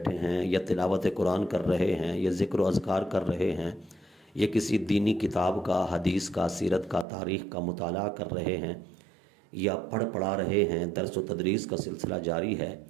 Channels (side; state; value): left; drops out; at 7.1 s